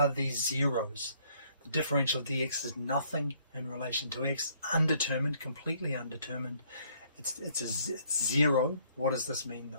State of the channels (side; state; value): both; inverted; correlation -0.64